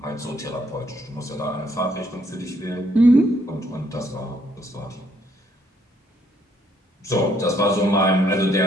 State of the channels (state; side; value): normal; both; correlation 0.69